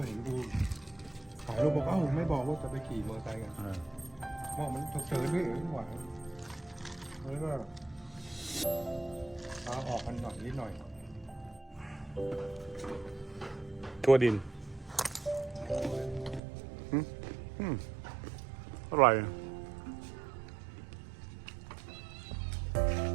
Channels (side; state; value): left; drops out; at 16.4 s